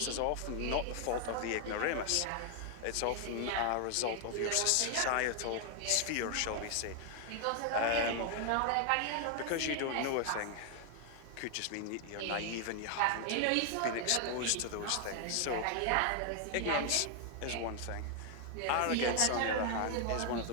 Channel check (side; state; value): both; different; correlation 0.00